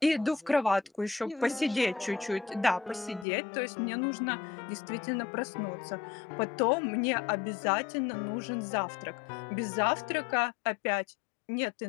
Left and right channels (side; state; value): right; drops out; at 3.2 s